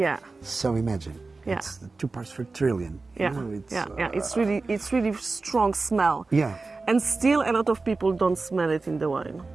So imagine. Yeah. It's 2 parts per trillion. Yeah. It's really strong smell. Yeah. And still a lot of people don't smell it in the wine.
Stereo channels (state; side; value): quieter; left; 3.8 dB